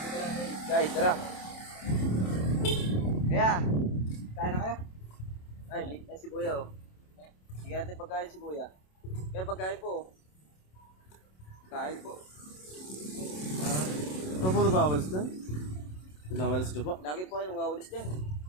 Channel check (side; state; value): right; late; 27 ms